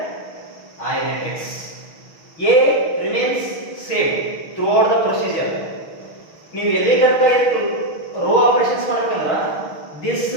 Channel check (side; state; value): right; late; 6.2 ms